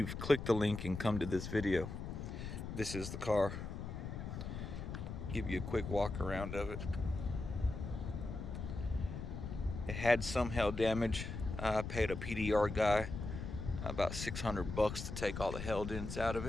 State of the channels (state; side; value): noise; left; rumble, 6 dB below the sound